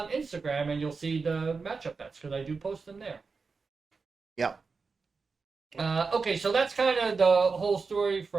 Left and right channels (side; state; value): left; quieter; 4.7 dB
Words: Instagram, and you'll see the matchup bets, because I do post them there. Yep. Okay, so that's kind of the whole story